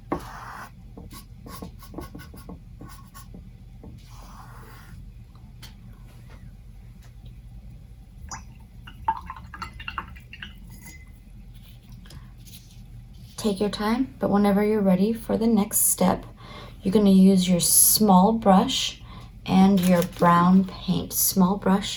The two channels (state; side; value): identical; both; correlation 1.00